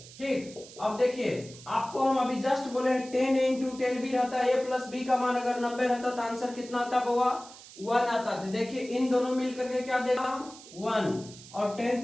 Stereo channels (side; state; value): right; noise; hiss, 18 dB below the sound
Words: ठीक, अब देखिए आपको हम अभी जस्ट बोले हैं 10 इंटू 10 भी रहता है, a प्लस बी का मान अगर 90 रहता तो आंसर कितना आता बुआ, 1 आता था। देखिए इन दोनों मिलकर के क्या देगा, 1, और 10